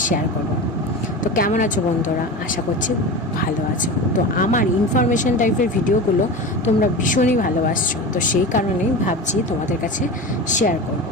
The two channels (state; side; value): normal; both; correlation 0.28